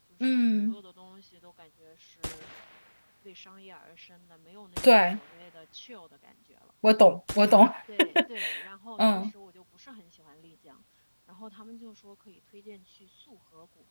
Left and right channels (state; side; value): inverted; both; correlation -1.00